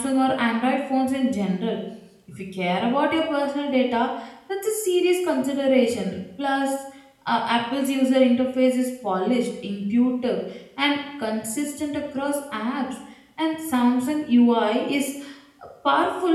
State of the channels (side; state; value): both; identical; correlation 1.00